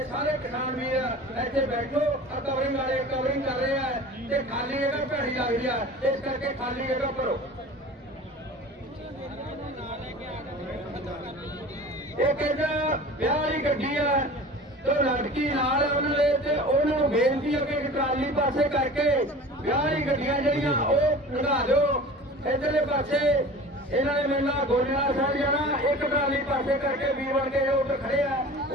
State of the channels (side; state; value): both; normal; correlation 0.39